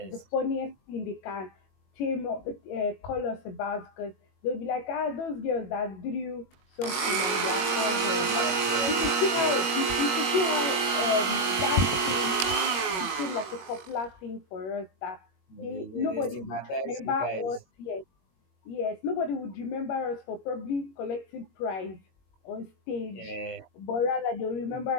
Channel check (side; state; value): right; late; 21 ms